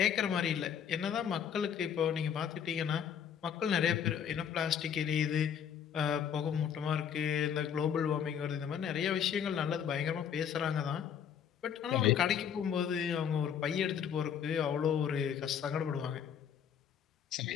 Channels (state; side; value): quieter; right; 8.3 dB